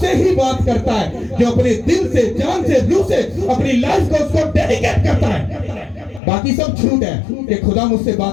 ही बात करता है जो अपने दिल से, जान से, रूह से अपनी लाइफ को उसको डेडिकेट करता है। बाकी सब झूठ है कि खुदा मुझसे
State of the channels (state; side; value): drops out; right; at 6.2 s